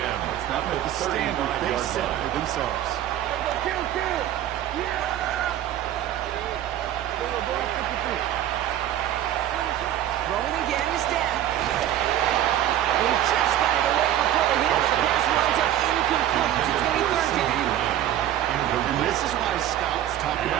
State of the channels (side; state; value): left; quieter; 11.9 dB